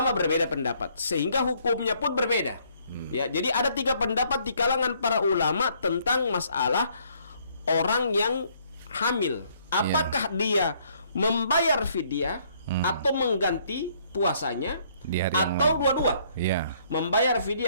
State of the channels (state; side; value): inverted; both; correlation -0.66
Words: berbeda pendapat, sehingga hukumnya pun berbeda. Ya, jadi ada 3 pendapat di kalangan para ulama tentang masalah orang yang hamil. Apakah dia membayar fidyah atau mengganti puasanya? Atau dua-dua, membayar fidyah